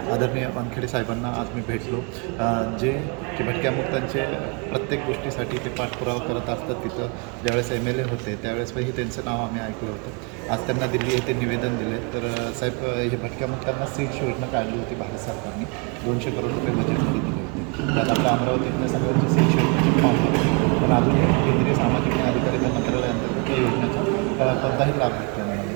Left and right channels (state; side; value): quieter; left; 33.1 dB